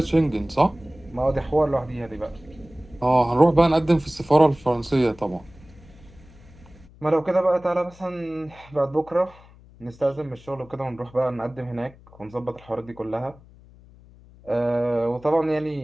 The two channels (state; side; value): noise; left; hum, 24 dB below the sound